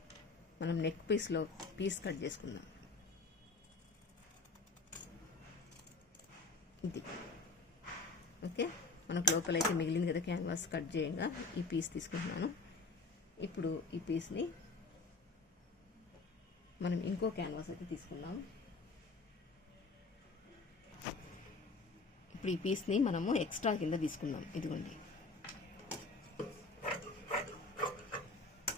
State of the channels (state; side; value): quieter; right; 3.6 dB